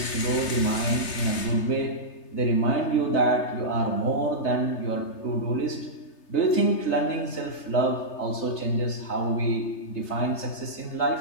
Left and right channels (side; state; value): right; late; 3.3 ms